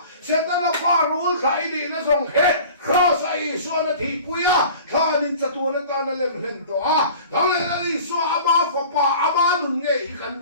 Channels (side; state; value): both; inverted; correlation -0.43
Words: sẽ tới là pha hú khải đi nó xong hết khó sai xua nó thì quý à thà nên chặt tuôn nó ta nó lên lên to à thằng này nó đi xua ama phật pa ama nung nghe ý căn